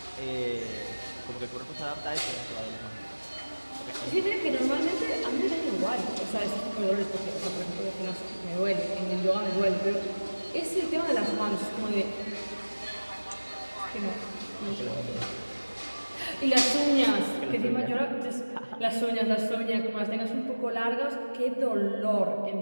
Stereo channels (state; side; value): inverted; both; correlation -1.00